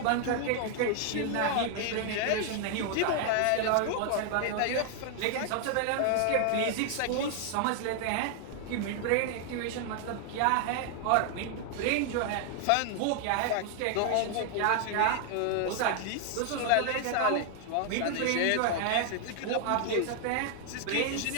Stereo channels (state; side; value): different; both; correlation 0.00